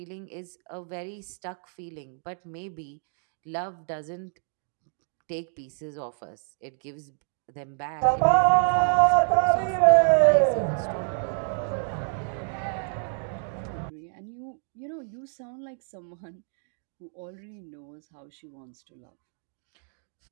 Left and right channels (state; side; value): silent; left; 57 dB below the other